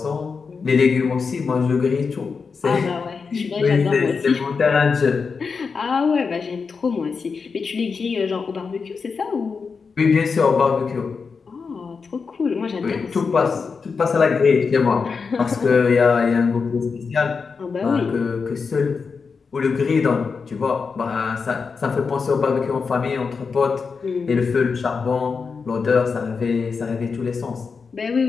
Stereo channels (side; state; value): right; quieter; 5.2 dB